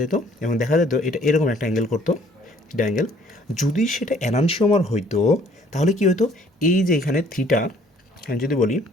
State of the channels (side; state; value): both; normal; correlation 0.59